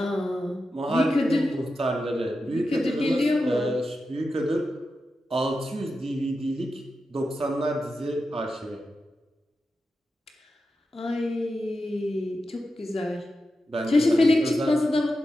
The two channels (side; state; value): both; normal; correlation 0.90